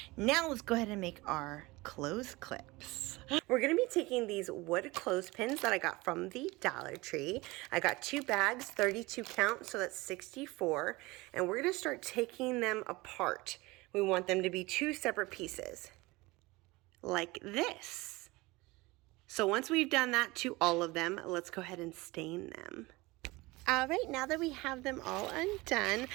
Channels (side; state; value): left; quieter; 22.1 dB